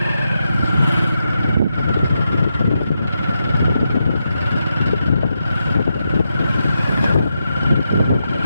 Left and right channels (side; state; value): both; inverted; correlation -0.86